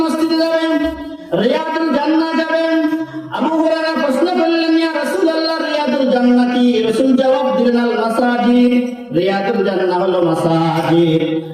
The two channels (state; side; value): identical; both; correlation 1.00